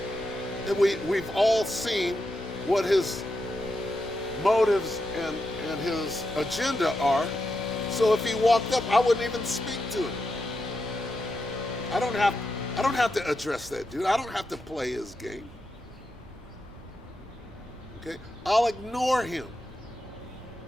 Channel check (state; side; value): normal; both; correlation 0.86